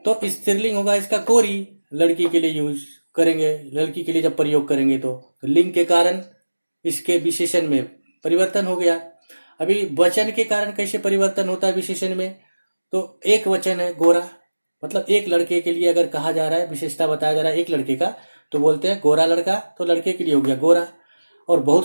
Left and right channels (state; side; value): inverted; both; correlation -1.00